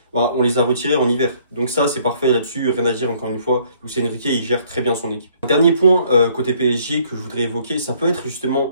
bah, on les a retirés en hiver. Donc ça, c'est parfait là-dessus, rien à dire encore une fois. Luis Enrique, il gère très bien son équipe. Un dernier point côté PSG que je voudrais évoquer, ça peut être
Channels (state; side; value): inverted; both; correlation -0.63